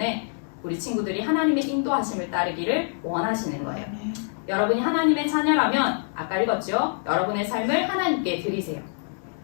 우리 친구들이 하나님의 인도하심을 따르기를 원하시는 거예요. 여러분이 하나님의 자녀라면 아까 읽었죠? 여러분의 삶을 하나님께 드리세요.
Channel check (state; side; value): silent; right; digital silence